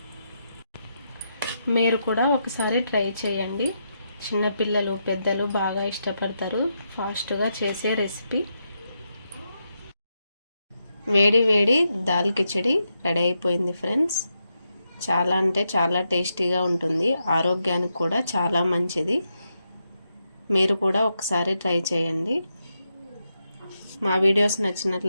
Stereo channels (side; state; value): both; inverted; correlation -0.84